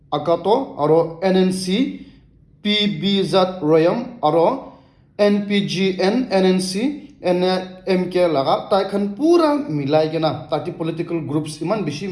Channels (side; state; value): both; identical; correlation 1.00